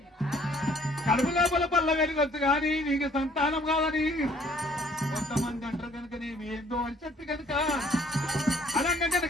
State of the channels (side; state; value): both; normal; correlation 0.59